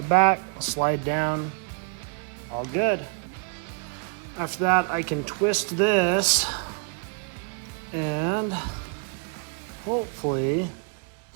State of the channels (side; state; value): left; quieter; 39.6 dB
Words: back, slide down, all good. After that, I can twist this and hopefully